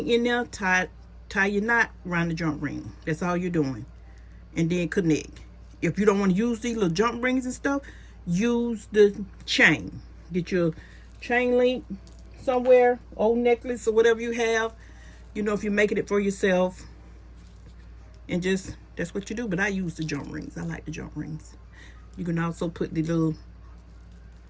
in there, tie your knot around the jump ring. That's all you're doing. And then connect. If you don't want to use these little jump rings and stuff, use the chain. Get your chain link somewhere, old necklace or whatever you have. You know, if you're making it for yourself. And just, that's what you do. But I use the jump rings. I like the jump rings. You can also put the little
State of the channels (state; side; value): identical; both; correlation 1.00